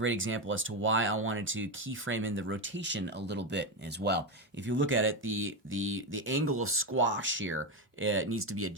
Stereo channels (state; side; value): normal; both; correlation 0.11